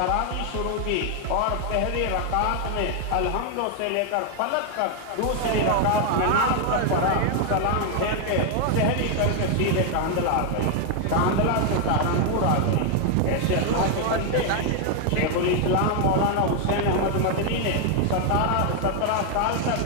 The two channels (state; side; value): different; both; correlation 0.01